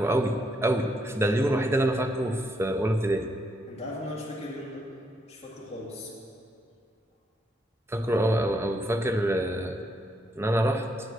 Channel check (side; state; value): both; normal; correlation 0.77